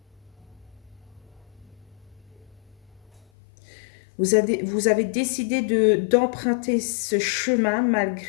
Vous avez décidé d'emprunter ce chemin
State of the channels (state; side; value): drops out; right; at 3.2 s